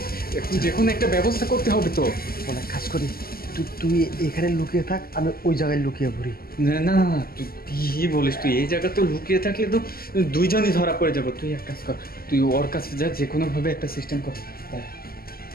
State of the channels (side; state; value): right; late; 0.43 ms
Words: এখন যে কোনো একটা ব্যবস্থা করতে হবে তো। অনেক কাজ করি, তুই এখানে লুকিয়ে থাক, আমি ওই জায়গায় লুকিয়ে পড়ি। না না না, তুই কি বলিস, তুই এই জায়গা তো লুকিয়ে থাকলে তো দুইজনই ধরা পড়ে যাব। তুই এক কাজ কর, তুই ওর কাছে যা, যে কোনো ভাবে একটা সিস্টেম কর।